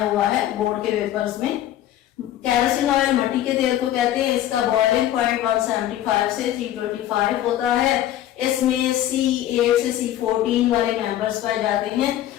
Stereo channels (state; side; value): quieter; right; 12.6 dB